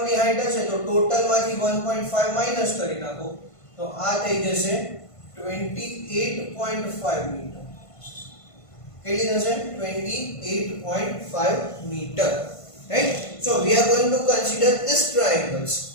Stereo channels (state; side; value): late; right; 1.5 ms